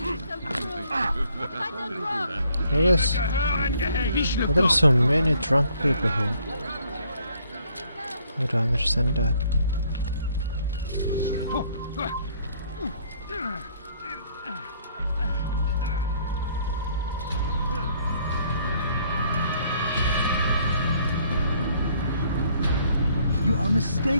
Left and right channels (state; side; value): inverted; both; correlation -0.65